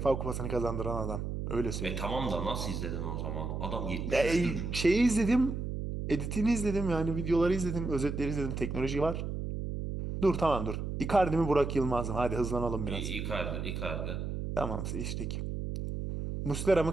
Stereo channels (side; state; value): right; noise; hum, 4 dB below the sound